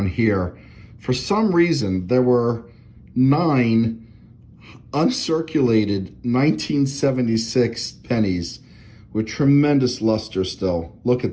here. For some reason, there were 9 uncirculated 1976 pennies with tremendous luster still. Look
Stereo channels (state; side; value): identical; both; correlation 1.00